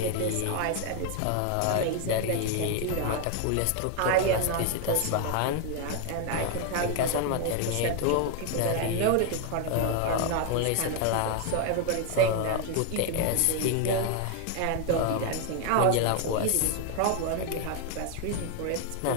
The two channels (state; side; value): different; both; correlation 0.00